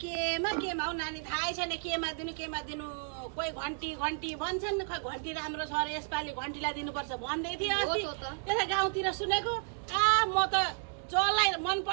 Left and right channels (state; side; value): silent; left; 56 dB below the other